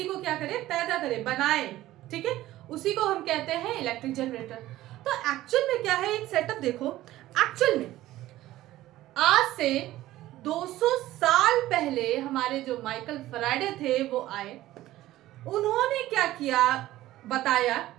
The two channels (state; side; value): quieter; left; 15.4 dB